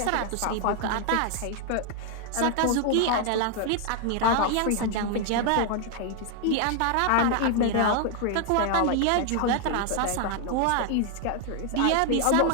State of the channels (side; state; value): both; different; correlation 0.00